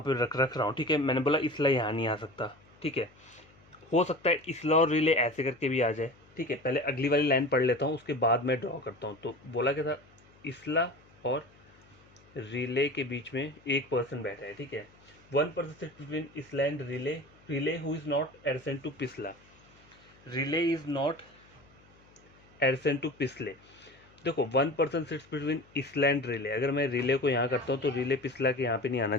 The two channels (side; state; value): left; noise; hum, 28 dB below the sound